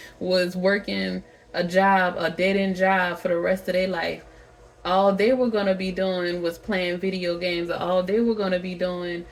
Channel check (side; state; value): both; identical; correlation 1.00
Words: was working a job, a dead-end job for the rest of their life. All they were going to be doing was playing video games. All they were going to be doing